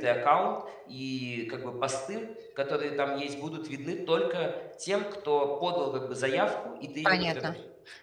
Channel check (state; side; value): identical; both; correlation 1.00